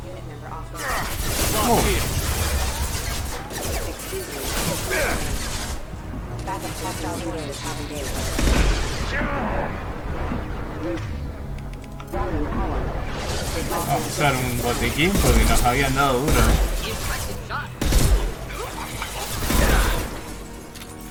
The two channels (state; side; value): identical; both; correlation 1.00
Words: Unit member off. Excuse me. Backup hostile forces have engaged. Vamos a usar un botiquín porque nos habían dado duro.